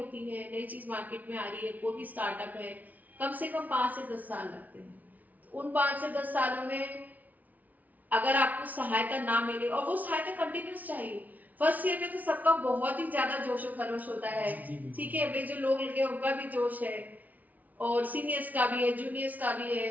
है, नई चीज मार्केट में आ रही है, कोई भी स्टार्टअप है, कम से कम 5 से 10 साल लगते हैं। तो उन 5 से 10 सालों में अगर आपको सहायता ना मिले, और वो सहायता कंटिन्यूस चाहिए, फर्स्ट ईयर में तो सबका बहुत ही ज्यादा जोशो खरोश होता है, ठीक है, वे जो लोग लगे उनका भी जोश है, और सीनियर्स का भी है, जूनियर्स का भी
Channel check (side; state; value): left; late; 0.075 ms